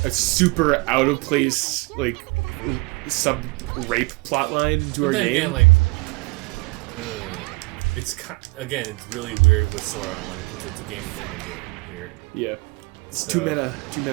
super out-of-place, like, sub-rape plotline into our game? But then again, like... it's it's really weird with Sword Art Online because it's a game within a game here. Yeah. It's too meta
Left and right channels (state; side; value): quieter; left; 25.6 dB